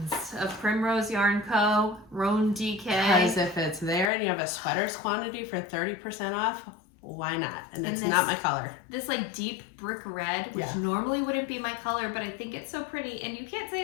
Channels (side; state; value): right; drops out; at 4.1 s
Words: of Primrose Yarn Co. Roan DK. Because if it's there and you have a sweaters quantity for 30% off, why not? And it's not my color. This like deep brick red, which normally wouldn't be my color, but I think it's so pretty. And you can't say